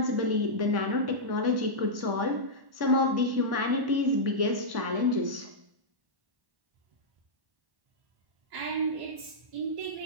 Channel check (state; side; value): late; left; 1.1 ms